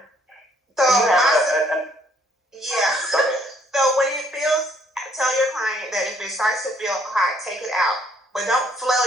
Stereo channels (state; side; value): normal; both; correlation 0.66